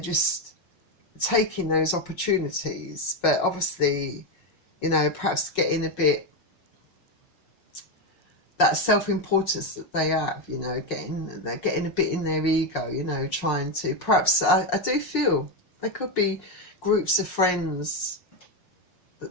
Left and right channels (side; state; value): right; late; 5.5 ms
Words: taking those opportunities, but obviously, you know, perhaps getting a bit, that self-importance that they have, you know, they're getting a bit in their ego, you know, trying to, perhaps, I do feel there could be groups of friends